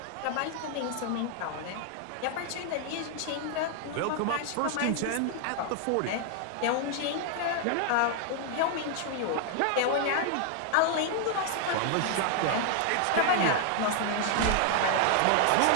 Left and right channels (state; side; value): different; both; correlation 0.00